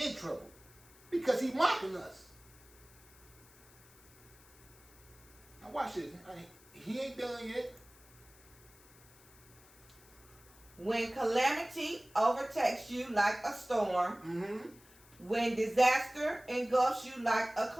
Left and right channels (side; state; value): left; noise; hiss, 25 dB below the sound